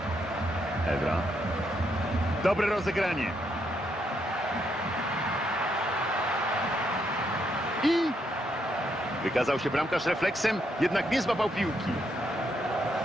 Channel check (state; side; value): normal; both; correlation 0.77